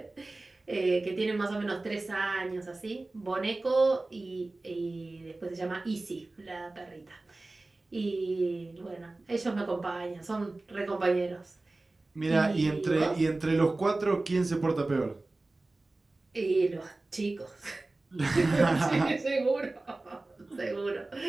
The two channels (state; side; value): quieter; left; 3.1 dB